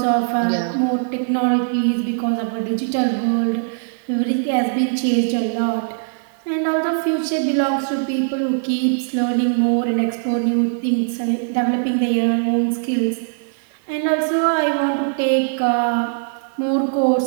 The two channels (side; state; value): left; silent; digital silence